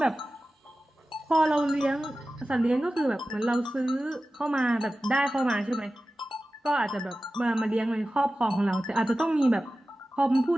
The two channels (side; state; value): both; normal; correlation 0.95